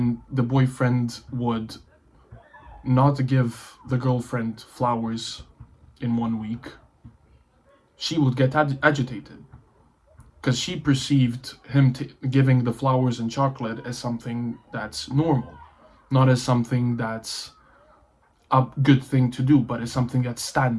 the boyfriend would not give the girlfriend flowers in 1 week, she would get agitated because she perceived him giving the flowers and chocolate as something that's normal, not as something that's a good thing to do, but as something that's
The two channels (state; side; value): identical; both; correlation 1.00